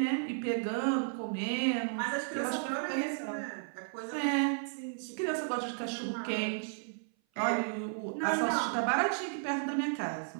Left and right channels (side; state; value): left; silent; 55 dB below the other